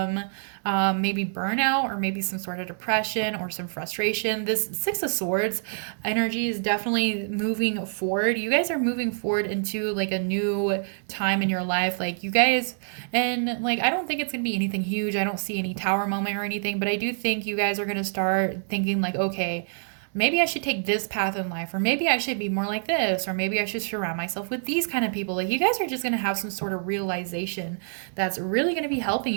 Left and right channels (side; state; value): left; silent; 61 dB below the other